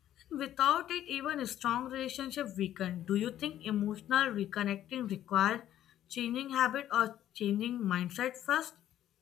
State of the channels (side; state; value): right; quieter; 11.9 dB